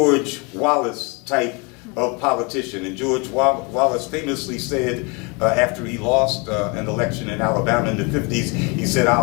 Wallace type of politician. And George Wallace famously said, after he lost an election in Alabama in the 50s, he said,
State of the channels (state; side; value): quieter; right; 30.2 dB